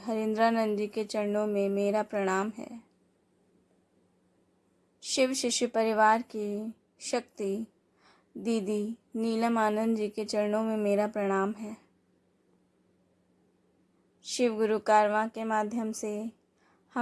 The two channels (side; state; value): both; identical; correlation 1.00